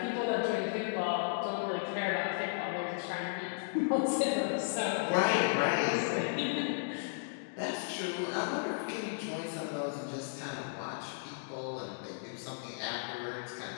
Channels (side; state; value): right; silent; digital silence